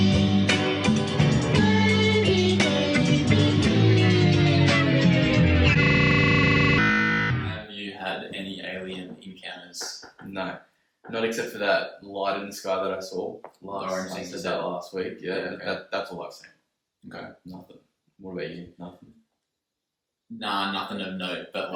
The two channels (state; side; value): identical; both; correlation 1.00